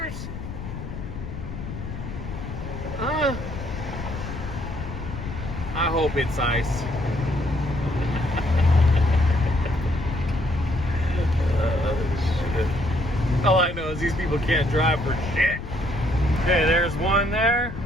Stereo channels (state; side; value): noise; left; rumble, 8 dB below the sound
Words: I hope it's ice. Shit. All I know is these people can't drive for shit. Okay, there's one there.